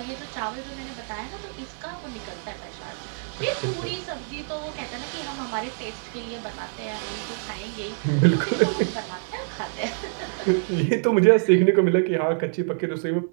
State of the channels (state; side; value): silent; left; 61 dB below the other